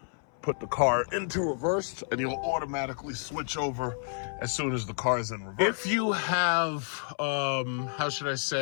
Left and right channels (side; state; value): right; silent; 58 dB below the other